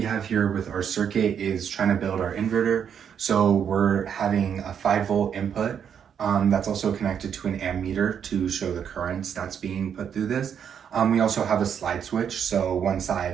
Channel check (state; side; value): quieter; left; 8.0 dB